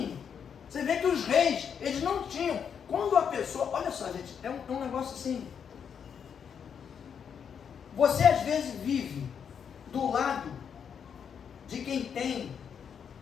você vê que os reis, eles não tinham. Quando a pessoa, olha só, gente, é um negócio assim. Você às vezes vive do lado de quem tem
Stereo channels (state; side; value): quieter; right; 7.4 dB